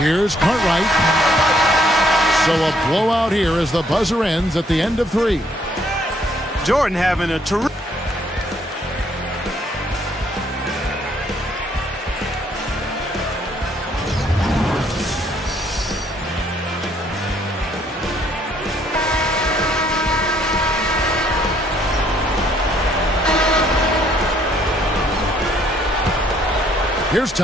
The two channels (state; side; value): normal; both; correlation 0.66